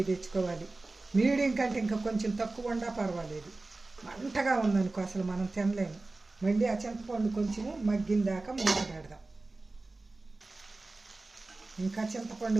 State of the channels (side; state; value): left; quieter; 3.2 dB